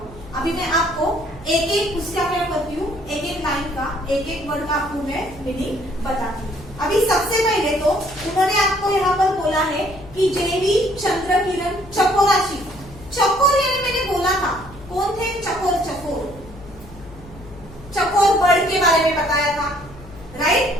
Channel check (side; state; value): left; noise; hum, 19 dB below the sound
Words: अभी मैं आपको एक एक उसका क्या करती हूँ, एक एक लाइन का, एक एक वर्ड का आपको मैं मीनिंग बताती हूँ। अभी सबसे पहले तो उन्होंने आपको यहाँ पर बोला है कि जेवी चंद्रकिरण चकोराशी। चकोर यानी मैंने बोला था कौन थे चकोर, चकोर चकोर बर्ड के बारे में बताया था,